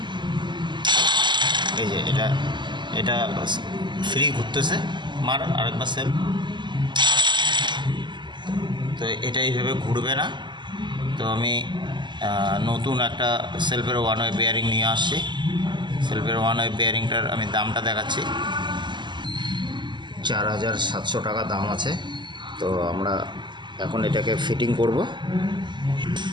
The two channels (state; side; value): late; left; 0.22 ms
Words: এই যে এটা ফ্রি ঘুরতেছে, মার আরেকবার সেলফ, তো এটা এইভাবে ঘুরবে না। তো আমি নতুন একটা সেলফের ওয়ান ওয়ে বেয়ারিং নিয়ে আসছি। সেলফের ওয়ান ওয়ে বেয়ারিংটার আমি দামটা দেখাচ্ছি, 4700 টাকা দাম আছে। তো আমরা এখন এটাকে ফিটিং করব।